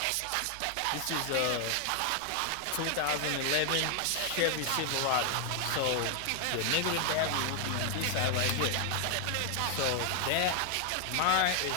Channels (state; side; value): different; both; correlation 0.00